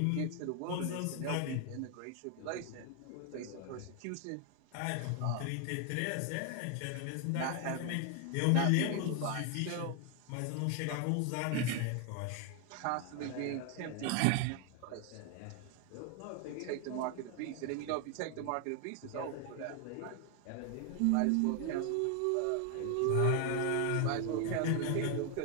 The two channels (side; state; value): both; different; correlation 0.01